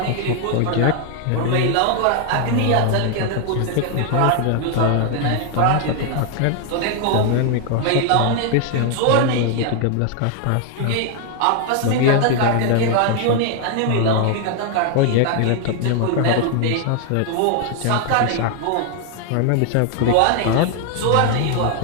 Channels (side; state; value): both; different; correlation 0.00